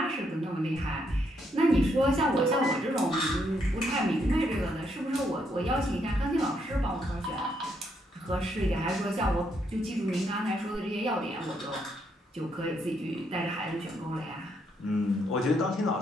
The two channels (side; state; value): both; normal; correlation 0.75